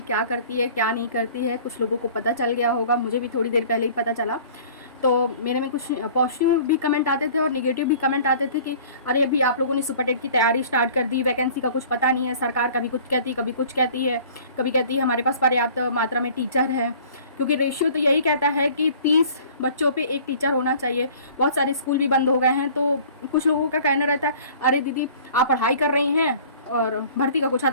क्या करती है क्या नहीं करती है, कुछ लोगों को पता चल गया होगा, मुझे भी थोड़ी देर पहले ही पता चला। तो मेरे में कुछ पॉजिटिव भी कमेंट आते थे और नेगेटिव भी कमेंट आते थे कि अरे अभी आप लोगों ने सुपर टेट की तैयारी स्टार्ट कर दी, वैकेंसी का कुछ पता नहीं है, सरकार कभी कुछ कहती है कभी कुछ कहती है, कभी कहती है हमारे पास पर्याप्त मात्रा में टीचर है, क्योंकि रेशियो तो यही कहता है कि 30 बच्चों पे एक टीचर होना चाहिए। बहुत सारे स्कूल भी बंद हो गए हैं, तो कुछ लोगों का कहना रहता है अरे दीदी आप पढ़ाई कर रही हैं और भर्ती का कुछ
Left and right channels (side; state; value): both; inverted; correlation -0.49